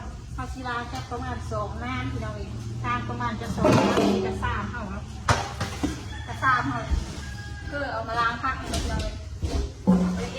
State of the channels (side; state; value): both; identical; correlation 1.00